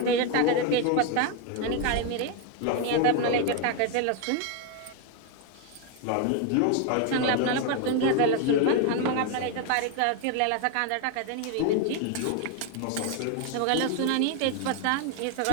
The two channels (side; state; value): both; different; correlation 0.01